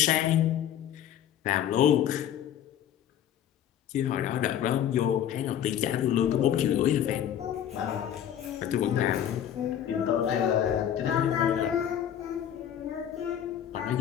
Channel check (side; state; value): right; quieter; 10.2 dB